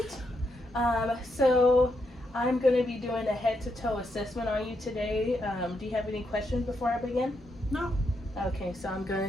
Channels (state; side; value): normal; both; correlation 0.80